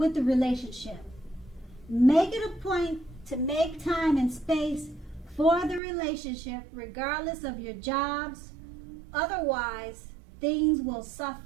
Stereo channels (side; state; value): left; drops out; at 5.8 s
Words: the relationship. Make it a point to make time and space for the relationship, regardless of your jobs. Otherwise, things will